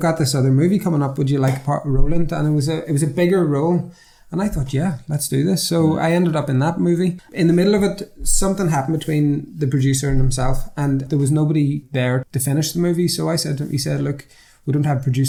this other movie coming up. Would you like a role in it? And it was a bigger role. And I thought, yeah, let's do this. So I ended up in that movie. In the middle of it, something happened between the producer and himself, and there was nobody there to finish the movie. So he said, look, we don't have a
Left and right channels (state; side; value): identical; both; correlation 1.00